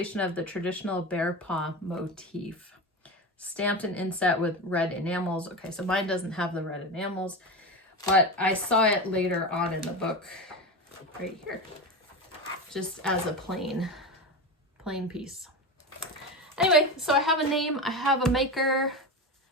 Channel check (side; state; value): both; normal; correlation 0.22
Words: of the traditional bear paw motif. Stamped and inset with red enamels. Okay, so mine doesn't have the red enamels, but I saw it later on in the book right here, just as a plain piece. Anyway, so I have a name, I have a maker.